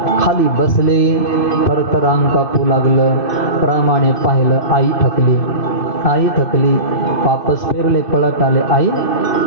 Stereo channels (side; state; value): right; late; 2.6 ms